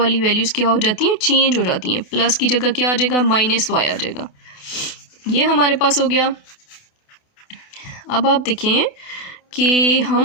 वैल्यूज़ क्या हो जाती हैं, चेंज हो जाती हैं, प्लस की जगह क्या आ जाएगा, -y आ जाएगा। ये हमारे पास हो गया। अब आप देखें कि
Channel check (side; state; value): right; late; 28 ms